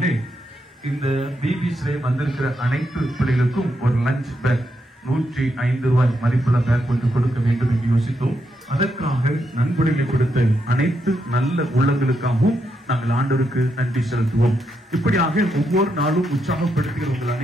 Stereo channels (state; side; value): normal; both; correlation 0.81